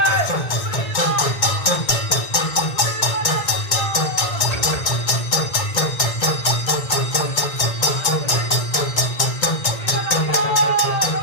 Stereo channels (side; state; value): right; late; 2.1 ms